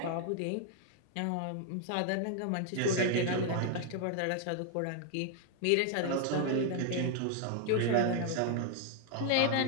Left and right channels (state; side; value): different; both; correlation 0.00